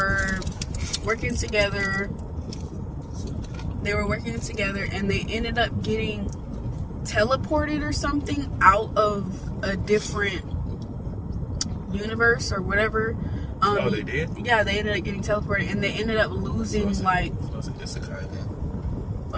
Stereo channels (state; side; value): identical; both; correlation 1.00